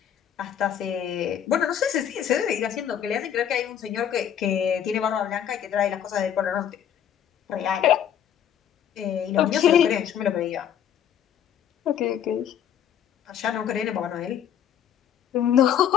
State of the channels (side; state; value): right; quieter; 9.5 dB